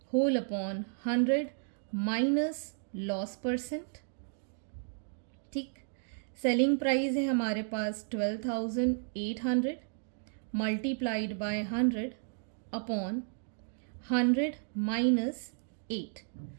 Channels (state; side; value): silent; left; digital silence